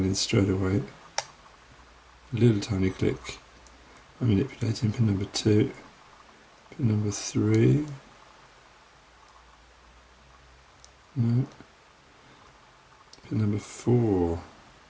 straight away. A little tiny click. I'm manipulating pin number 2. Pin number 3. No. Pin number 4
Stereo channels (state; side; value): identical; both; correlation 1.00